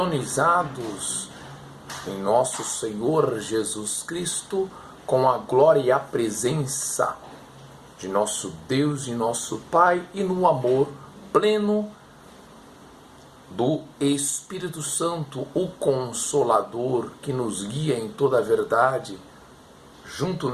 em nosso Senhor Jesus Cristo, com a glória e a presença de nosso Deus e nosso Pai, e no amor pleno do Espírito Santo, o Consolador, que nos guia em toda a verdade, junto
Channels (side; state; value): both; identical; correlation 1.00